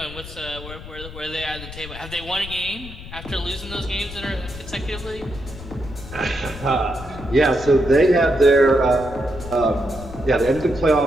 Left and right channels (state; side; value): noise; left; rumble, 13 dB below the sound